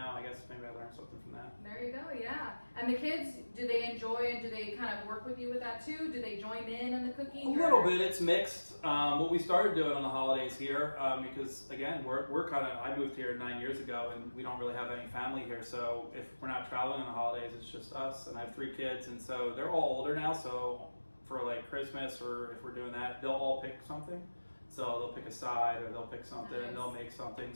I guess maybe I learned something from that. There you go, yeah. And the kids, do they enjoy and do they kind of work with you with that too? Do they join in the cooking? A little bit, it's mixed. What we started doing on the holidays here, because again, we're kind of, I moved here 9 years ago and we don't really have any family here, so if we're not traveling on the holidays, it's just us, and I have 3 kids, and so they're all older now, so for like Christmas or if we're doing that, they'll all pick something. So they'll pick a side or they'll pick something and they'll make something.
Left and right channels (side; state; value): both; inverted; correlation -1.00